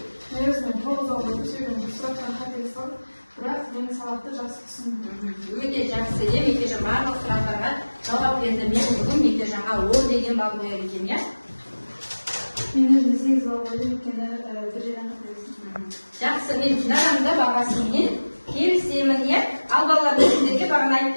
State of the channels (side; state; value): both; inverted; correlation -1.00